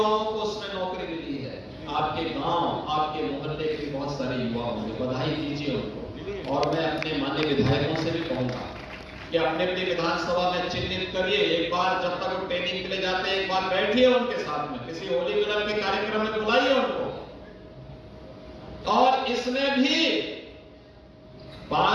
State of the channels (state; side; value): identical; both; correlation 1.00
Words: को उसमें नौकरी मिली है। आपके गांव, आपके मोहल्ले के बहुत सारे युवा होंगे, बधाई दीजिए उनको। और मैं अपने माननीय विधायकों से भी कहूंगा कि अपने अपनी विधानसभा में चिन्हित करिए, एक बार जब तक वो ट्रेनिंग के लिए जाते हैं, एक बार बैठिए उनके साथ में, किसी होली मिलन के कार्यक्रम में बुलाइए उनको। और इसमें भी